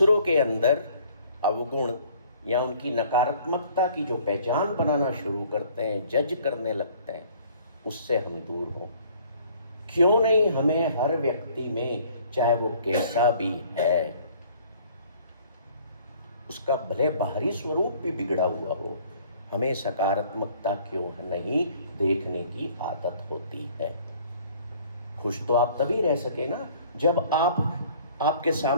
के अंदर अवगुण या उनकी नकारात्मकता की जो पहचान बनाना शुरू करते हैं, जज करने लगते हैं, उससे हम दूर हों। क्यों नहीं हमें हर व्यक्ति में, चाहे वो कैसा भी है, उसका भले बाहरी स्वरूप भी बिगड़ा हुआ हो, हमें सकारात्मकता क्यों नहीं देखने की आदत होती है। खुश तो आप तभी रह सके ना जब आपके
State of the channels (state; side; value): inverted; both; correlation -0.55